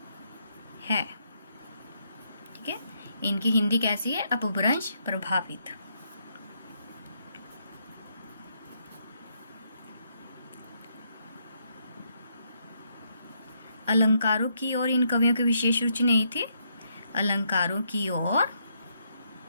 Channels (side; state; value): both; inverted; correlation -0.75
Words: है। ठीक है, इनकी हिंदी कैसी है? अपभ्रंश प्रभावित। अलंकारों की ओर इन कवियों की विशेष रुचि नहीं थी। अलंकारों की ओर